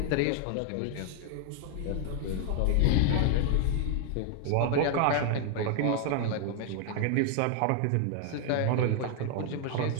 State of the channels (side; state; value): both; different; correlation 0.00